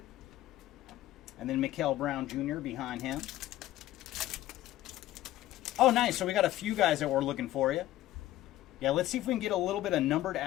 And then Mikael Brown Jr. behind him. Oh, nice. So we got a few guys that we're looking for you. Yeah, let's see if we can get a little bit of numbered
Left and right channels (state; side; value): quieter; right; 14.8 dB